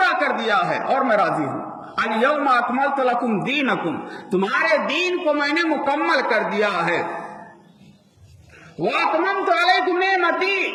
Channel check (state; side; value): identical; both; correlation 1.00